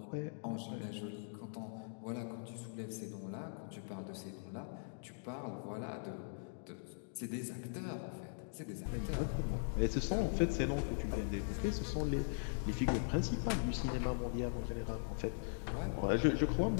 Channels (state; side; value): silent; right; digital silence